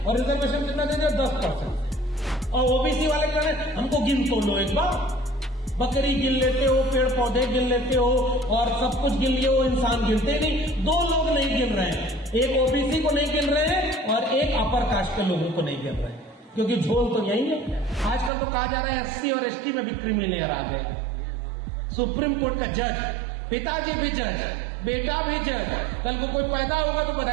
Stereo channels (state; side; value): drops out; left; at 18.3 s